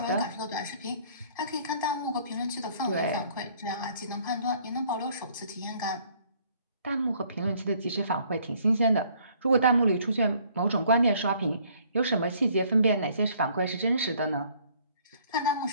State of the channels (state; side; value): inverted; both; correlation -0.61